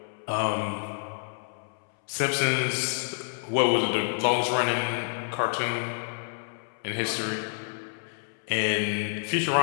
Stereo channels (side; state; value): right; silent; 59 dB below the other